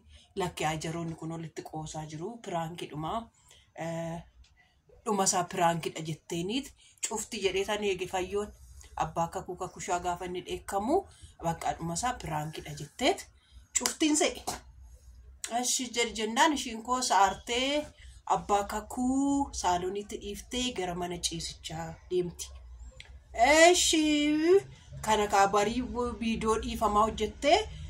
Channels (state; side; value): identical; both; correlation 1.00